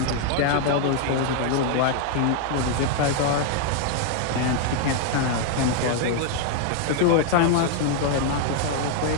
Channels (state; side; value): different; both; correlation 0.00